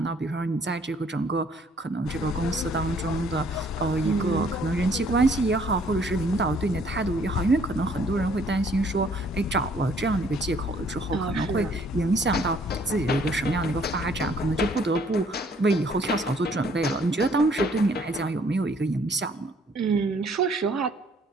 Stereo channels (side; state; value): both; normal; correlation 0.62